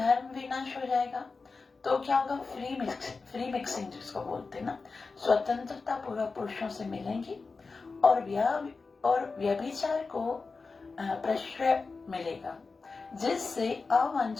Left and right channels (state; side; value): quieter; right; 4.3 dB